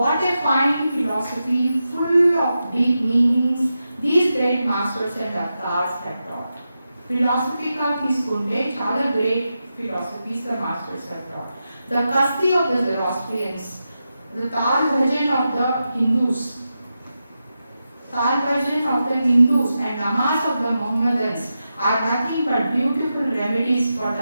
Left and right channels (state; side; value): inverted; both; correlation -0.90